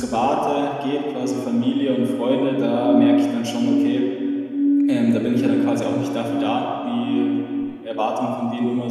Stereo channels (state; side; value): identical; both; correlation 1.00